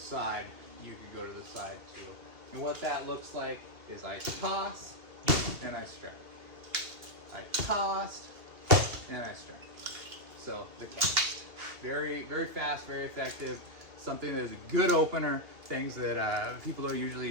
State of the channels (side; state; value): left; late; 2.7 ms